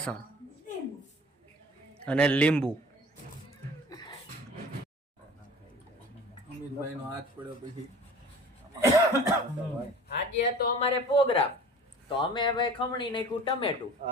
અને લીંબુ. અમિતભાઈનો હાથ પડ્યો પછી આજે તો અમારે પ્રોગ્રામ તો અમે ભાઈ ખમણી નાખ્યું ટમેટું.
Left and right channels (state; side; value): normal; both; correlation 0.43